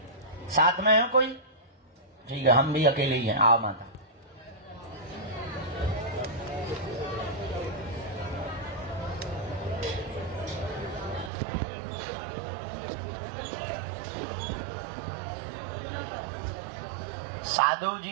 साथ में है कोई? ठीक है, हम भी अकेले ही हैं। आओ माता। साधु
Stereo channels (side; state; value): left; drops out; at 11.3 s